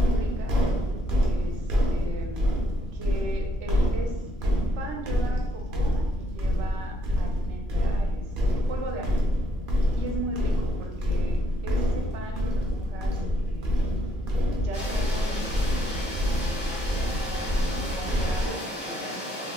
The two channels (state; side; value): normal; both; correlation 0.73